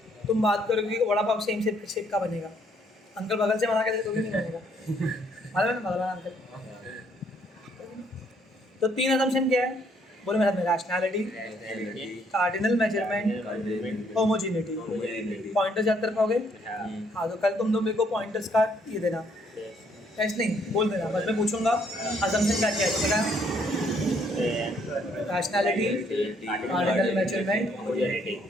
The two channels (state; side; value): normal; both; correlation 0.68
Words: तुम बात करोगे कि वड़ा पाव सेम शेप का बनेगा, अंकल बगल से बना के दे तो भी नहीं बनेगा। मालूम है ना भगवान अंकल? तो 3 असम्पशन क्या है? बोलो मेरे में, rationality, cardinal measurement, homogeneity. Pointers याद कर पाओगे? हाँ, तो कल तुम लोग मेरे को पॉइंटर्स का ये देना, टेस्ट नहीं बोल देना, बस मैं पूछूंगा असम्पशन क्या क्या है। तो क्या? Rationality, cardinal measurement,